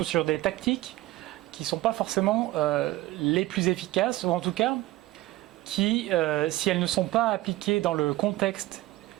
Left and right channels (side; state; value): left; quieter; 17.6 dB